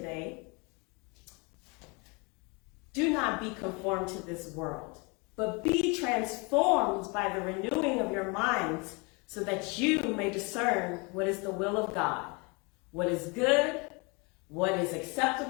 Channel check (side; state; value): right; quieter; 29.9 dB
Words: Do not be conformed to this world, but be transformed by the renewing of your minds, so that you may discern what is the will of God, what is good, what is